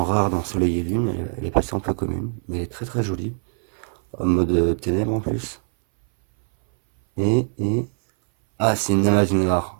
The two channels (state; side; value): silent; left; 62 dB below the other